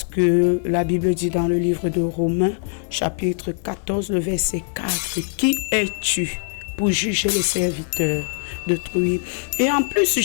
que la Bible dit dans le livre de Romains, chapitre 14, le verset 4, « Qui es-tu pour juger les serviteurs d'autrui ?» Et en plus,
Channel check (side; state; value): right; silent; 64 dB below the other